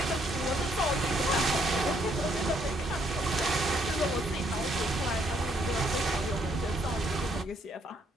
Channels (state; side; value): normal; both; correlation 0.70